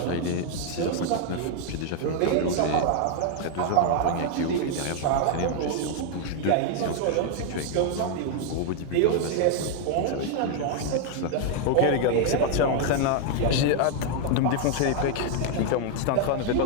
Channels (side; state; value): both; different; correlation 0.00